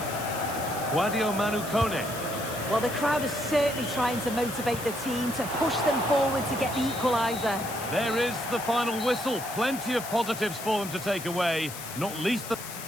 Guadio Manu Kone. Well, the crowd is certainly trying to motivate the team to push them forward to get the equaliser. There is the final whistle. Plenty of positives for them to take away, not least the...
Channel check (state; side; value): noise; left; hiss, 11 dB below the sound